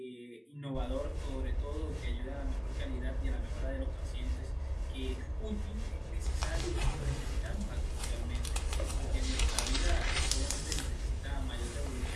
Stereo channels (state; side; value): identical; both; correlation 1.00